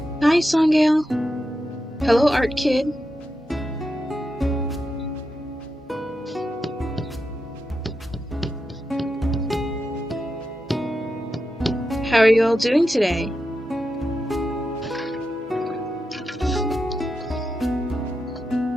Hi, Songgale. Hello, Art Kid. How are you all doing today?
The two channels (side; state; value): both; normal; correlation 0.88